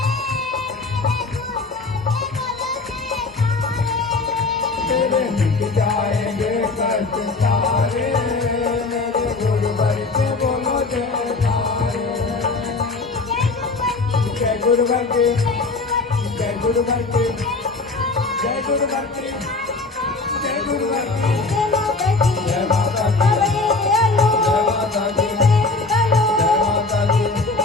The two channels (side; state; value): right; quieter; 3.7 dB